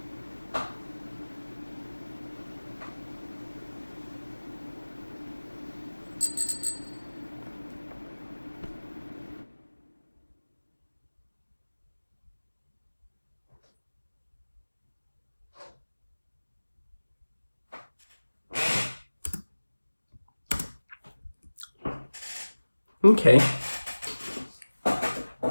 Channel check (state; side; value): inverted; both; correlation -1.00